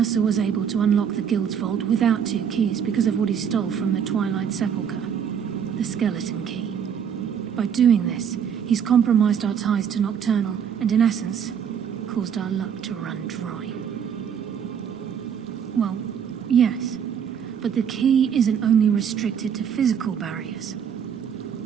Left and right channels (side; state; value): left; quieter; 7.9 dB